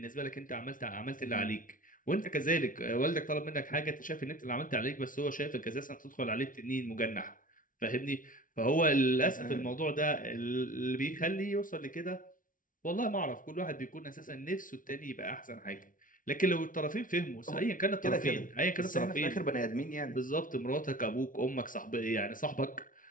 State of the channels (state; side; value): late; right; 0.39 ms